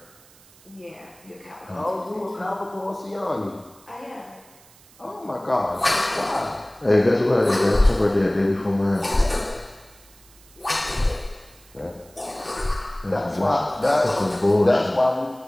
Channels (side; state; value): right; noise; hiss, 26 dB below the sound